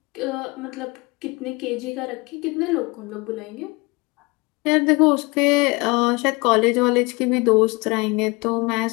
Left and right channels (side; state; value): right; quieter; 25.7 dB